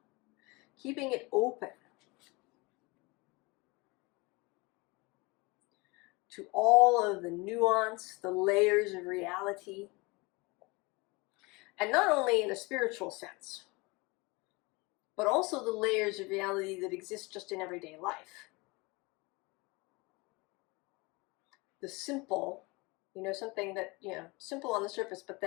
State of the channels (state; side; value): quieter; right; 25.6 dB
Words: keeping it open to all of the nuance, the layers of reality, and not only in a spiritual sense, but also the layers of reality that exist just in everyday life. The simple, you know, something that, you know, simple on the surface, but